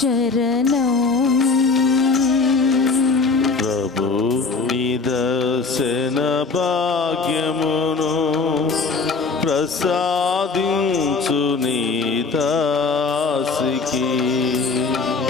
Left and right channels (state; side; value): quieter; right; 4.4 dB